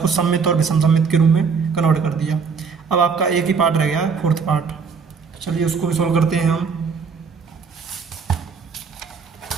सममित और विषम सममित के रूप में कन्वर्ट कर दिया। अब आपका एक ही पार्ट रह गया है, 4th पार्ट। चलिए उसको भी सॉल्व करते हैं हम।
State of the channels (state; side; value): quieter; left; 5.5 dB